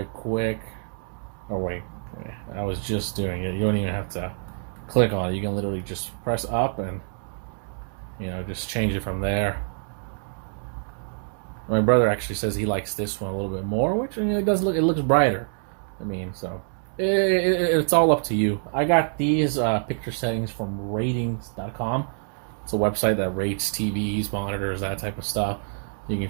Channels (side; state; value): left; silent; 61 dB below the other